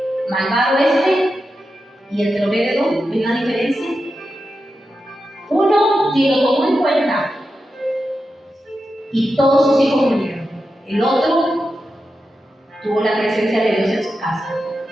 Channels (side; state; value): both; normal; correlation 0.90